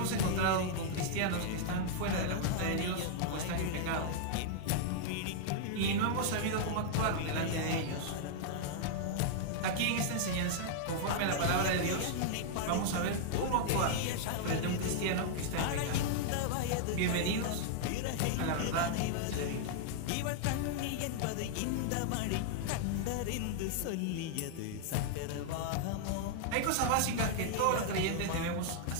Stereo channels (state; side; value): different; both; correlation -0.01